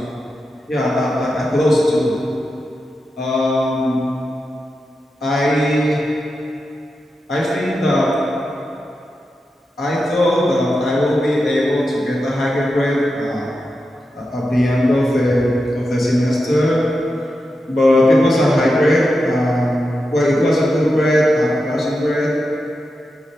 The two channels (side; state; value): both; normal; correlation 0.89